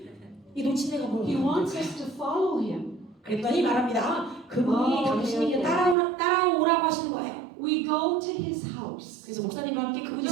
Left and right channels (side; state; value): left; drops out; at 6.0 s